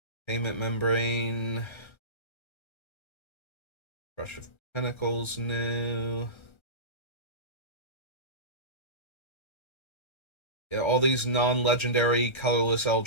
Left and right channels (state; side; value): late; right; 1.3 ms